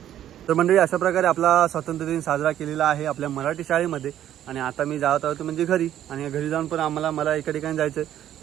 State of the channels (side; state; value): left; quieter; 11.5 dB